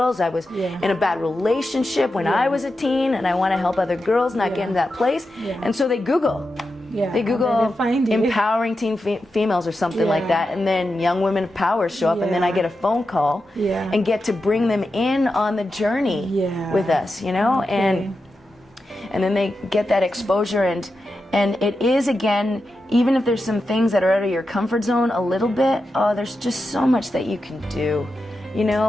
I was in a bad relationship when I was a teen, and I want to help other girls not get in that place. And so they Google empowering teen females or something like that, and then Young Women of Power show up, and then I get a phone call and get to bring them in on the journey with us, you know, and then they get that exposure. And it is, again, even if there's some things that are out of your comfort zone a little bit, there's just so much that you can do. You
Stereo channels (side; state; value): both; normal; correlation 0.89